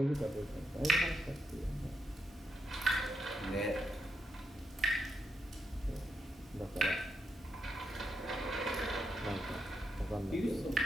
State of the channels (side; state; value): both; normal; correlation 0.82